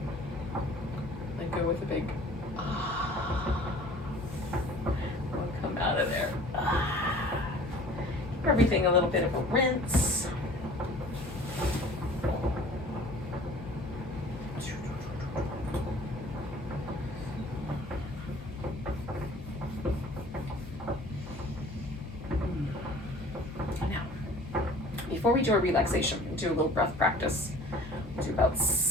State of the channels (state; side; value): noise; left; hum, 16 dB below the sound